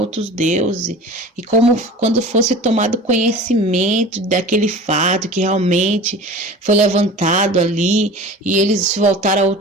deuses, e quando fosse tomado conhecimento daquele fato que realmente foi levantado ali, e eles se voltaram a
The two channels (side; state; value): both; normal; correlation 0.38